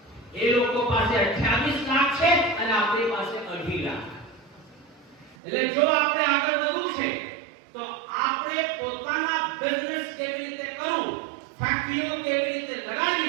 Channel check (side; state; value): left; drops out; at 5.4 s